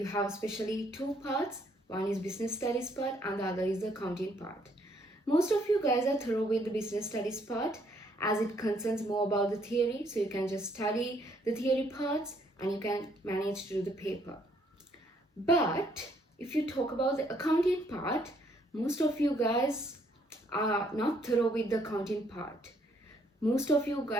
have especially two parts. One is business studies part and the other is the accounting part. Most of you guys are thorough with the business studies part as it concerns more about the theory. So you can just study the theory parts and you can manage to do the paper. But if you talk about the accounting part, most of you guys are not thorough with the accounting part. Most of you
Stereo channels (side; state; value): both; normal; correlation 0.68